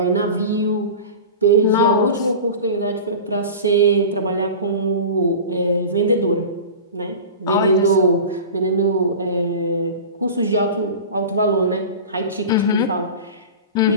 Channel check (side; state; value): both; inverted; correlation -0.33